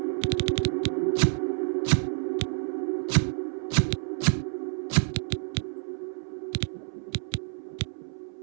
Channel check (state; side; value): silent; left; 59 dB below the other